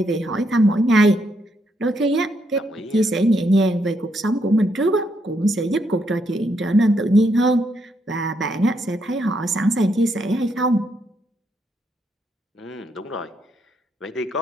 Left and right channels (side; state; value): both; normal; correlation 0.76